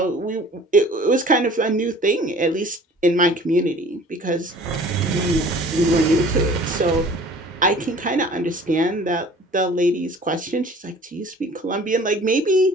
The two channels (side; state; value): both; normal; correlation 0.48